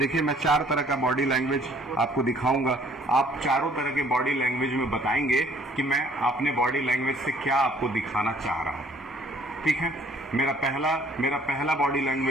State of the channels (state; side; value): normal; both; correlation 0.59